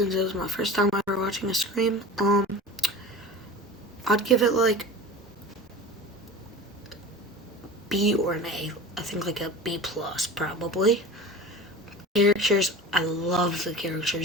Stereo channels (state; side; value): normal; both; correlation 0.36